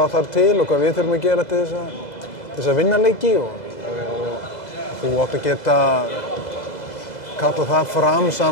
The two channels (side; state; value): right; late; 2.0 ms